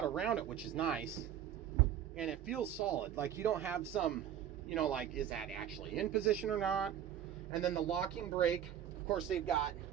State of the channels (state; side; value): quieter; left; 10.2 dB